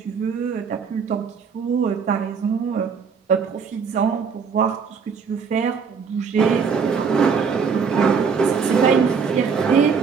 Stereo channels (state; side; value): quieter; left; 5.9 dB